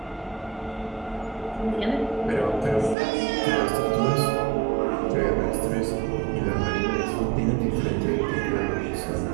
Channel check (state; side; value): drops out; left; at 3.0 s